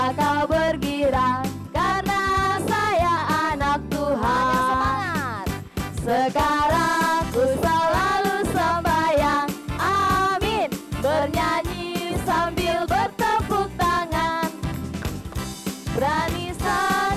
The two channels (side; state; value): both; identical; correlation 1.00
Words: kau bergirang? Karena saya anak Tuhan. Semangat. Sekarang ku selalu sembahyang, amin. Bernyanyi sambil bertepuk tangan. Berani